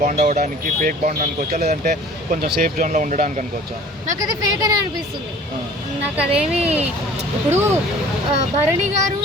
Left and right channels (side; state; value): both; normal; correlation 0.48